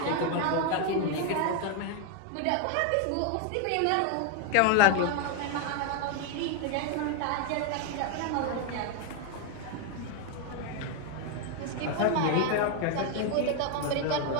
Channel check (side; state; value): both; different; correlation 0.01